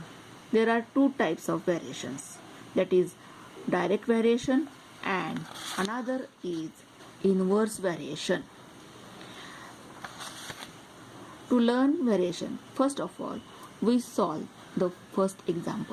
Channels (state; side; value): identical; both; correlation 1.00